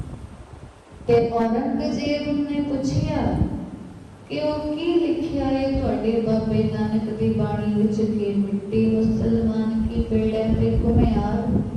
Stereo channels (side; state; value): both; identical; correlation 1.00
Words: ਤੇ ਔਰੰਗਜ਼ੇਬ ਨੇ ਪੁੱਛਿਆ ਕਿ ਉਹ ਕੀ ਲਿਖਿਆ ਹੈ ਤੁਹਾਡੇ ਬਾਬੇ ਨਾਨਕ ਦੀ ਬਾਣੀ ਵਿੱਚ ਕਿ ਮਿੱਟੀ ਮੁਸਲਮਾਨ ਕੀ ਪੇੜੈ ਤੇ ਘੁਮਿਆਰ।